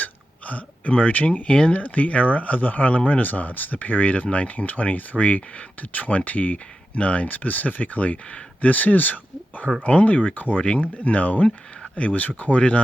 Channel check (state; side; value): normal; both; correlation 0.90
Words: emerging in the era of the Harlem Renaissance, the period of 1923 to 29 specifically. This is her only recording known. It was recorded